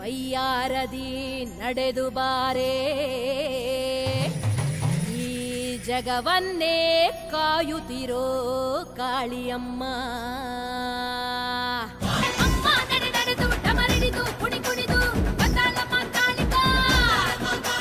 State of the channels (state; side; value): identical; both; correlation 1.00